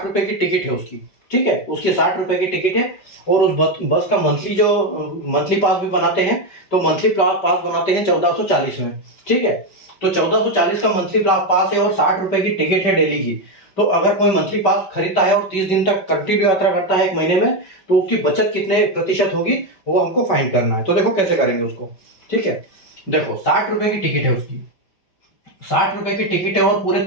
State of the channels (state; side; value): late; right; 5.2 ms